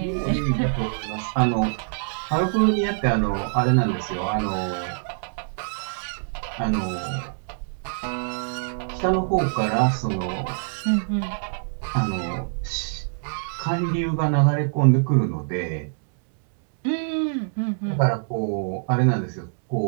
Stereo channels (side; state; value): left; silent; digital silence